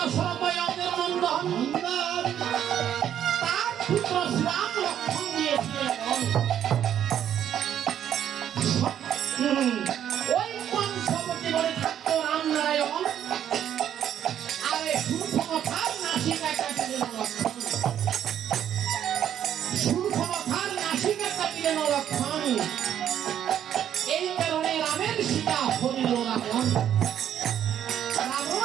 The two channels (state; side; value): quieter; left; 10.1 dB